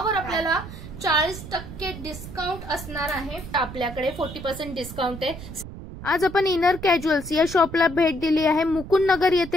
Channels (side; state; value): right; noise; rumble, 12 dB below the sound